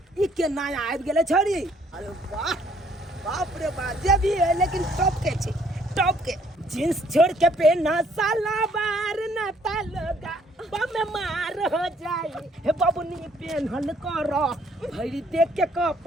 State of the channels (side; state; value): both; normal; correlation 0.64